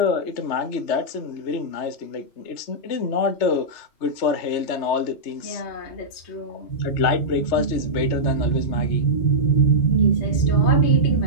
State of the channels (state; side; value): late; right; 3.3 ms